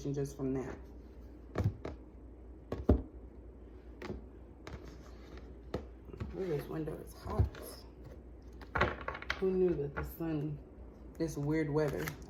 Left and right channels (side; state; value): both; identical; correlation 1.00